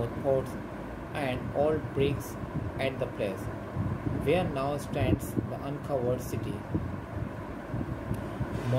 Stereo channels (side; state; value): both; identical; correlation 1.00